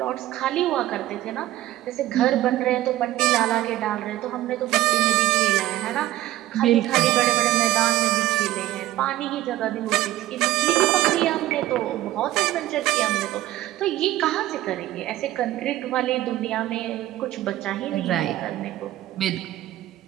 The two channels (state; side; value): quieter; left; 15.2 dB